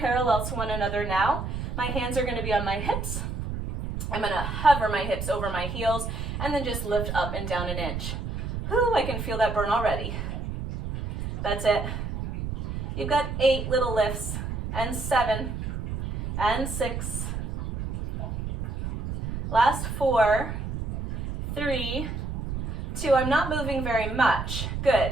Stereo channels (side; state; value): right; noise; rumble, 4 dB below the sound